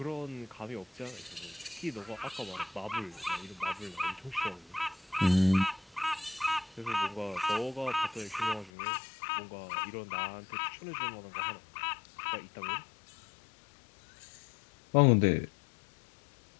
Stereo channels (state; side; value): drops out; right; at 8.7 s